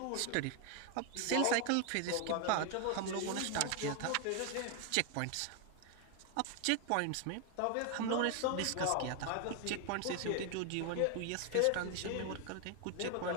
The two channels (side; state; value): both; different; correlation 0.01